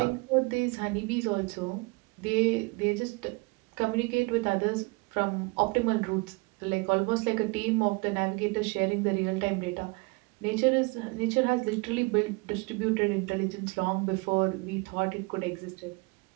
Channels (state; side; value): quieter; left; 28.0 dB